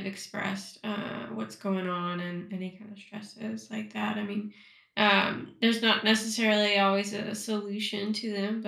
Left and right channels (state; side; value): identical; both; correlation 1.00